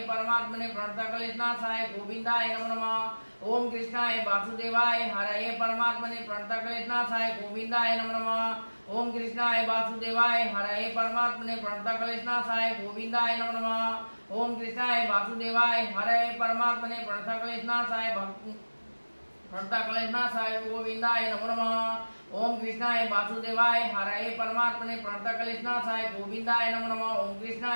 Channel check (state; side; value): inverted; both; correlation -1.00